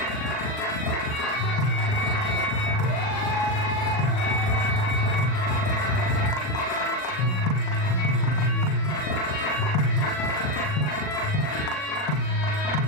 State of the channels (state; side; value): late; right; 39 ms